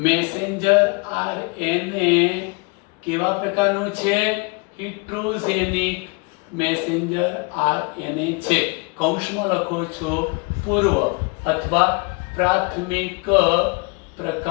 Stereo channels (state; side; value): quieter; right; 29.7 dB